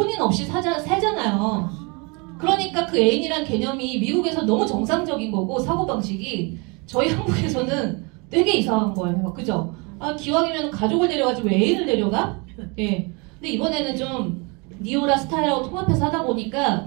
없이 살잖아요. 그러니까 그 애인이란 개념이 미국에서 너무 정상적인 거고 사고방식이 저희 한국에서는 되게 이상한 거예요. 그죠? 아, 기왕이면 가족을 데려가지 왜 애인을 데려가? 예. 근데 이번에는 좀 니오라 스타일하고 통합해서 하다 보니까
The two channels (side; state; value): left; quieter; 30.2 dB